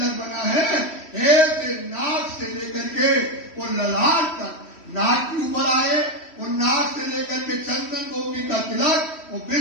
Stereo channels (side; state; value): right; late; 3.1 ms